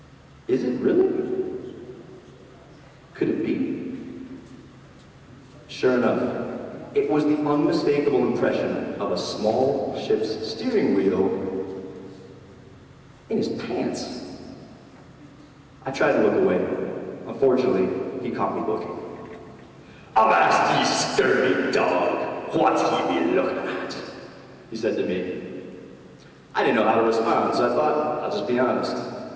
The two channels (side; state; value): both; identical; correlation 1.00